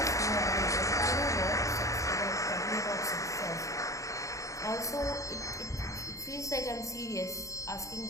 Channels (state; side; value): late; right; 0.16 ms